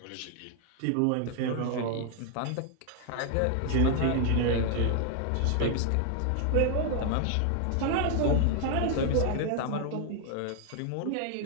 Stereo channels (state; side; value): different; both; correlation 0.00